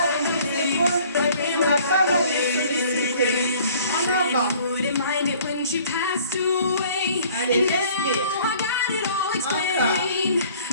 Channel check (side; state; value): both; inverted; correlation -0.53